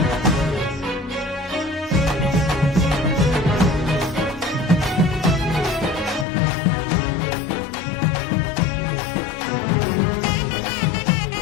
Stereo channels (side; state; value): right; drops out; at 6.2 s